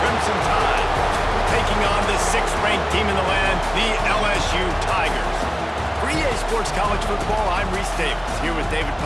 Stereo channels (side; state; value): both; identical; correlation 1.00